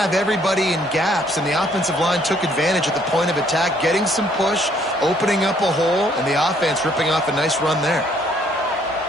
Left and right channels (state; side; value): normal; both; correlation 0.65